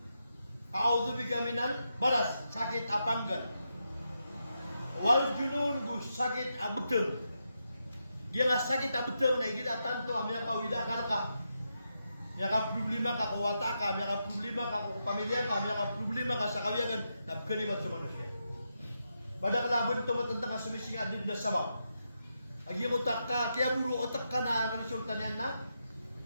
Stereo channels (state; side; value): inverted; both; correlation -0.85